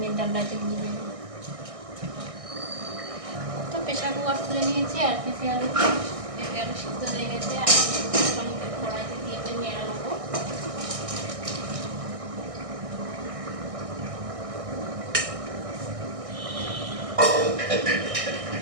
ডালনাতে দিয়ে দেবো। তো প্রেশার কুকার তুলে নিয়েছি, আর পেঁপে আলু সিদ্ধ হয়ে গেছে। আর কড়াইতে দিয়ে নেড়ে নেবো।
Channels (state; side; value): late; left; 1.6 ms